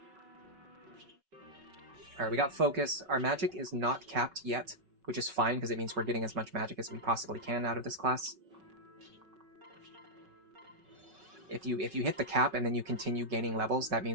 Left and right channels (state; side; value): late; left; 5.4 ms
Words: Alright, we got focus. Our magic is not capped yet, which is fine because it means we're getting as much magic as we possibly can out of this class. If you hit the cap and then you continue gaining levels, that